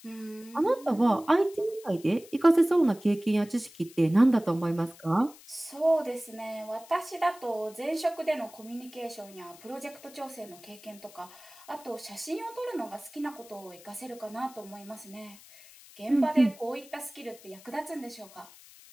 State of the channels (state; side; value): noise; left; hiss, 21 dB below the sound